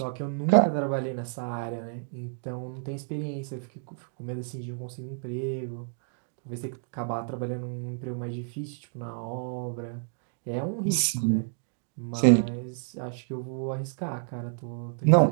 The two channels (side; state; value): left; silent; digital silence